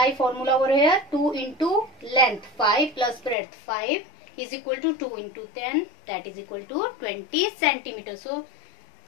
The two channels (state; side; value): drops out; right; at 3.4 s